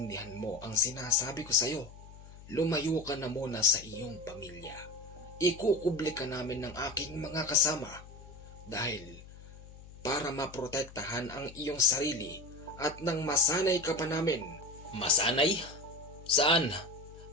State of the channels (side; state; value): left; noise; hum, 18 dB below the sound